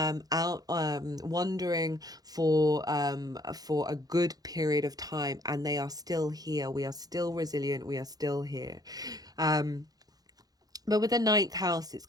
wandering for a good period of time, and they are still here. We are still resilient. We are still here. But with the ninth house, it's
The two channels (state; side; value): late; left; 0.18 ms